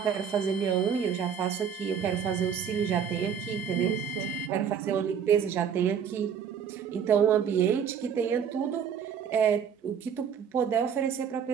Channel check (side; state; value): left; quieter; 7.6 dB